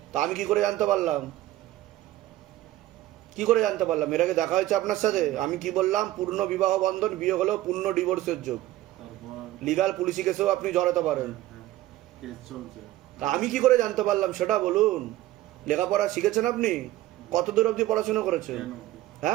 তা আমি কি করে জানতে পারলাম? কি করে জানতে পারলাম? এর আগে দেখা হয়েছে আপনার সাথে? আমি কি বললাম? পূর্ণ বিবাহ বন্ধন, বিয়ে হলেও পূর্ণ ডিভোর্সের যোগ, লিগাল পুলিশি কেসেও আপনি জড়াতে পারেন। তা আমি কি করে জানতে পারলাম সেটা বলুন। লেখাপড়া শিখেছেন আপনি? কত দূর অবধি পড়াশোনা করেছেন?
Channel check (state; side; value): quieter; left; 15.6 dB